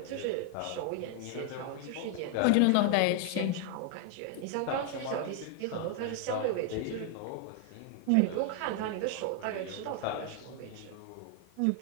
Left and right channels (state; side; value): different; both; correlation 0.00